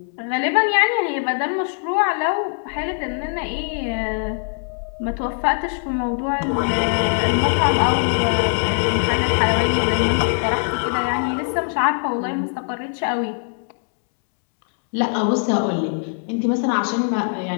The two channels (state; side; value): silent; right; 65 dB below the other